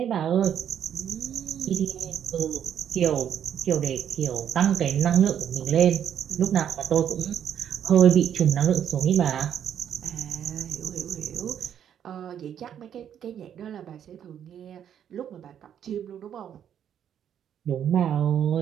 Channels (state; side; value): quieter; left; 9.3 dB